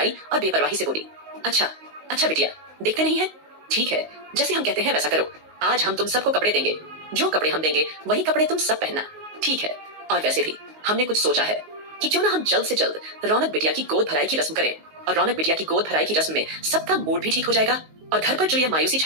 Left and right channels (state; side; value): late; left; 19 ms